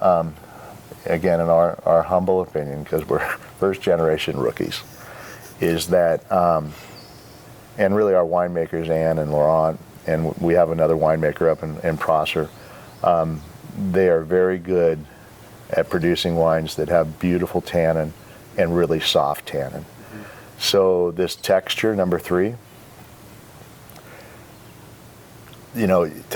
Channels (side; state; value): both; identical; correlation 1.00